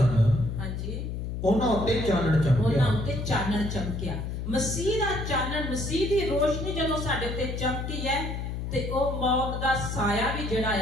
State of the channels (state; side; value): noise; left; hum, 5 dB below the sound